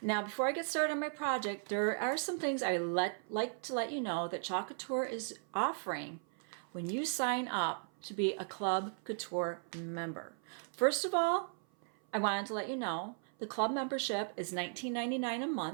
Now, before I get started on my project, there are some things I like to let you know that Chalk Couture is offering when you sign up to be a Club Couture member. First of all, I wanted to let you know the club membership is $19.99 a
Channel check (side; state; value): left; silent; 53 dB below the other